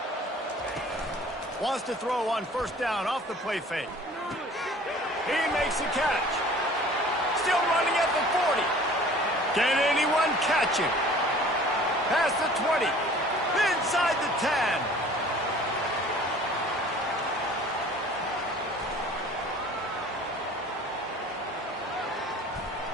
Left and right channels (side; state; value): both; normal; correlation 0.48